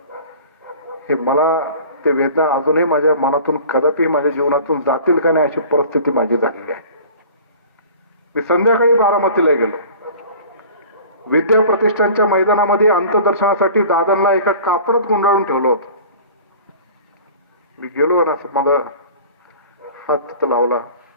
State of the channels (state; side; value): inverted; both; correlation -0.43